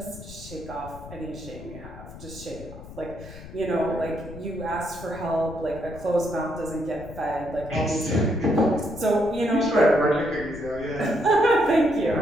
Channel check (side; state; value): left; noise; rumble, 15 dB below the sound